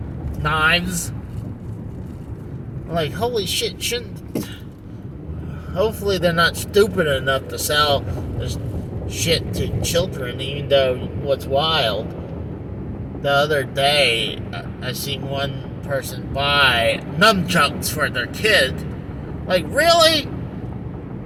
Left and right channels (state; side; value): identical; both; correlation 1.00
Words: knives. I'm like, holy shit! Hopefully they're not stupid enough to sell this shit to children. Even though what's wild, the other day I seen one person buy nunchucks for their kid. Like, really?